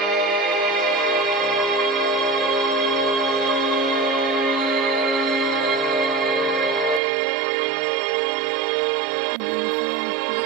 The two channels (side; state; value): left; drops out; at 7.0 s